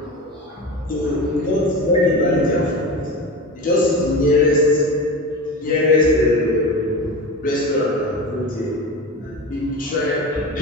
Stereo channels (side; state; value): both; normal; correlation 0.27